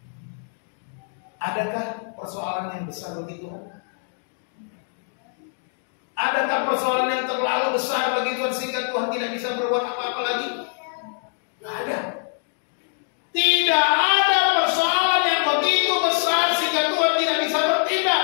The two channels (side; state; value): right; silent; digital silence